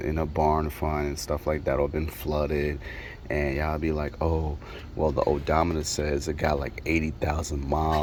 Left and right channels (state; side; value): identical; both; correlation 1.00